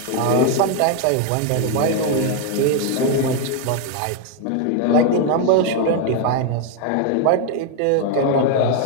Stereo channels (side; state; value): both; different; correlation 0.01